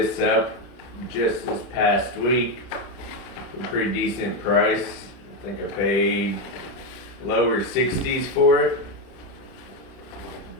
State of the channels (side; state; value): right; late; 30 ms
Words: up just this past week for a pretty decent price. I think I paid lower 60s for it.